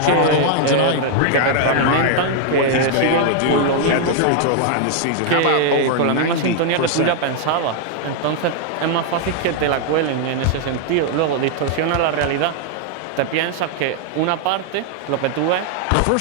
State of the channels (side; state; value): both; different; correlation 0.00